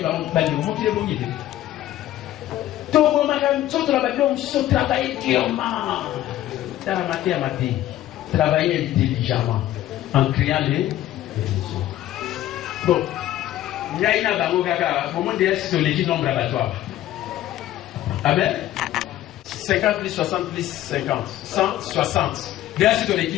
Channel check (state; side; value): quieter; right; 13.7 dB